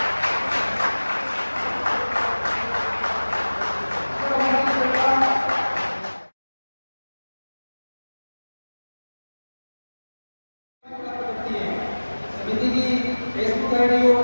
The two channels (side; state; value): both; inverted; correlation -1.00